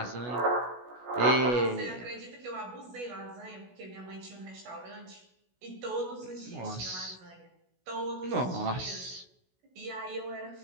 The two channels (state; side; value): late; left; 16 ms